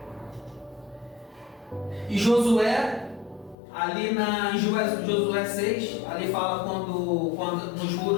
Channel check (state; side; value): drops out; right; at 3.6 s